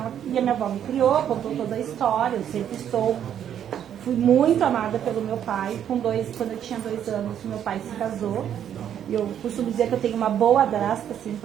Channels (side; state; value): left; quieter; 9.6 dB